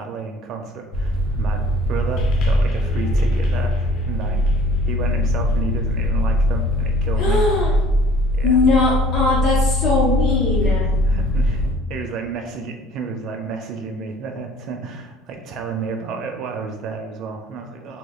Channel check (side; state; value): both; normal; correlation 0.53